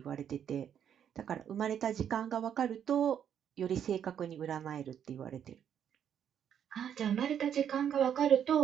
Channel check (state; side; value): quieter; left; 8.9 dB